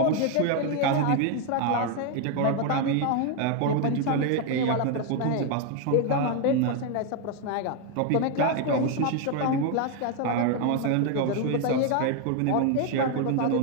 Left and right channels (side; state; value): both; different; correlation 0.01